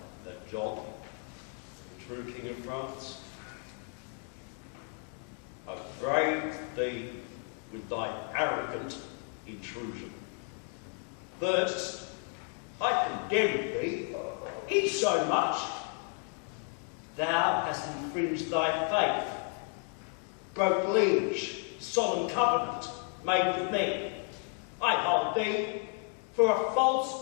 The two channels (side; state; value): right; quieter; 36.3 dB